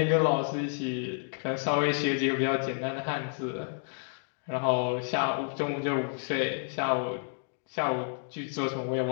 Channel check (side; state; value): right; silent; 58 dB below the other